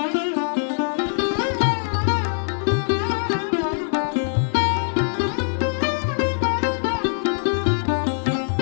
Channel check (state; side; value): silent; right; digital silence